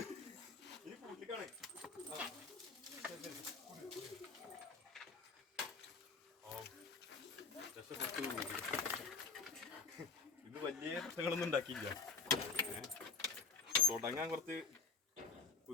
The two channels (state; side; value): quieter; right; 4.9 dB